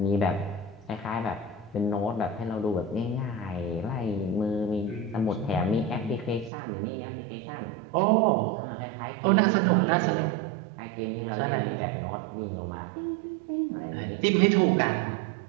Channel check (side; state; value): left; drops out; at 6.5 s